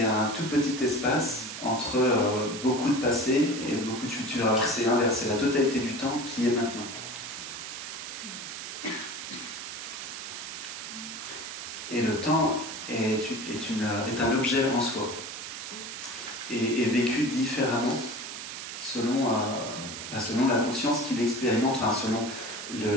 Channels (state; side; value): noise; right; hiss, 8 dB below the sound